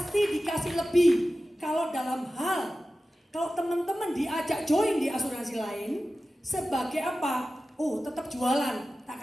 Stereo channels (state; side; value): normal; both; correlation 0.95